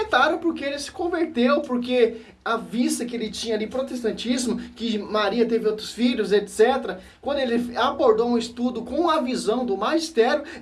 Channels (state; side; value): identical; both; correlation 1.00